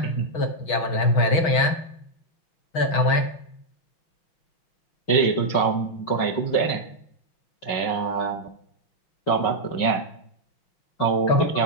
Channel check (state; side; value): late; right; 6.3 ms